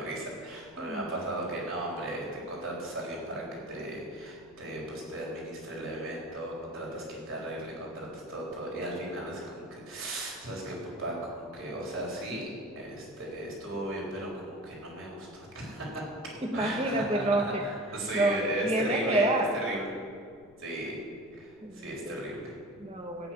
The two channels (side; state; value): left; noise; rumble, 27 dB below the sound